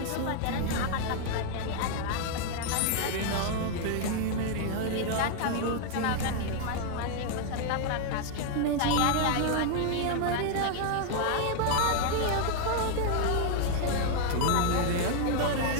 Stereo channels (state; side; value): different; both; correlation 0.00